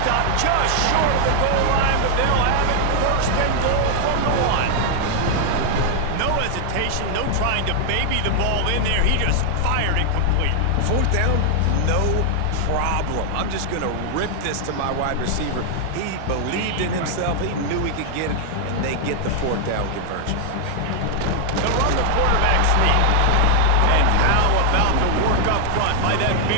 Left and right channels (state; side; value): different; both; correlation 0.00